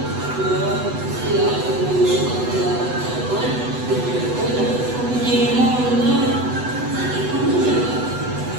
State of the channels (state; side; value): late; left; 8.1 ms